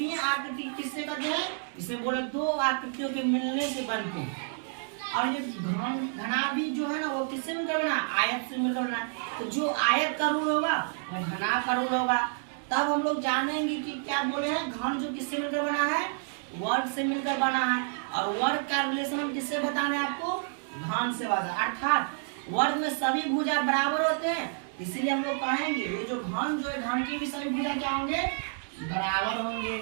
आकृति किससे कहते हैं? इसे बोले दो आकृतियों के मिलने से बनते हैं। और ये घनाभ भी जो है ना वो किससे मिलकर बना? आयत से मिलकर बना। तो जो आयत का रूल होगा वो घनाभ का रूल होगा। तब हम लोग जानेंगे कि क्या बोले हैं? घन जो किससे मिलकर बना है? वर्ग से मिलकर बना है। और वर्ग का रिलेशन हम किससे बताने आपको? घन से बता। अर्थात वर्ग में सभी भुजा बराबर होते हैं, इसीलिए हम लोग कहेंगे ये जो घन जो है घन की भी सभी भुजा क्या होंगे? बराबर होंगे।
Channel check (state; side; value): silent; left; 58 dB below the other